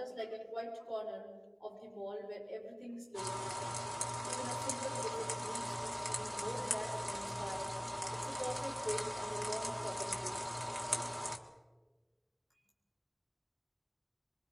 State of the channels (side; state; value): both; identical; correlation 1.00